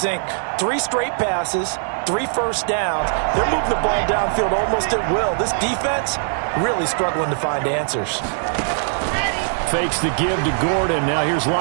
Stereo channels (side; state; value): left; silent; 65 dB below the other